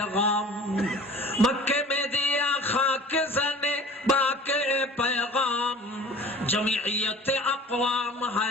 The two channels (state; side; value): normal; both; correlation 0.44